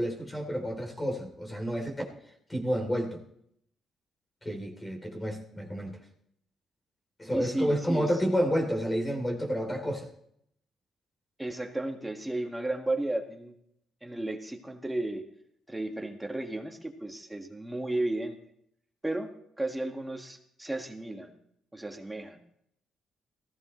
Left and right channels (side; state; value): both; normal; correlation 0.93